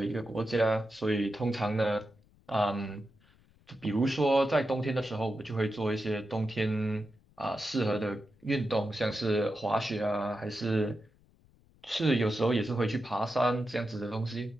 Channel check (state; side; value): noise; left; rumble, 30 dB below the sound